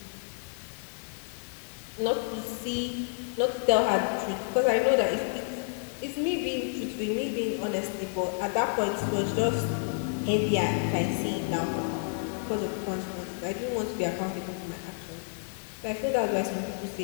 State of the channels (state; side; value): silent; right; 58 dB below the other